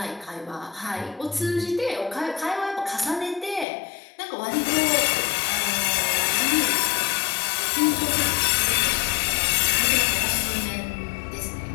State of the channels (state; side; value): drops out; right; at 3.7 s